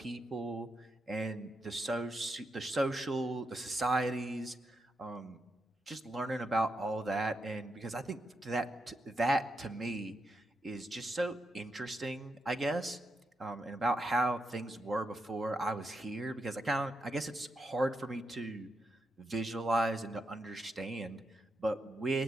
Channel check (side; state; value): both; normal; correlation 0.83